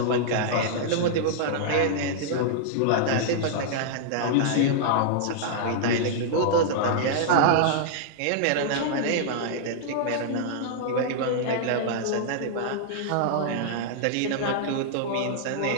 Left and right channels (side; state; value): both; different; correlation -0.01